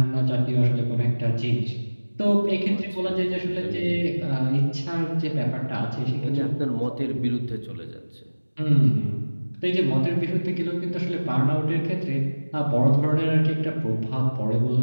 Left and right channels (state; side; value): inverted; both; correlation -1.00